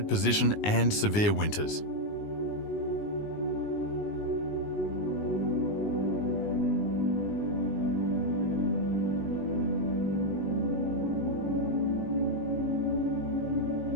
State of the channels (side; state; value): right; late; 19 ms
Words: position and severe winters.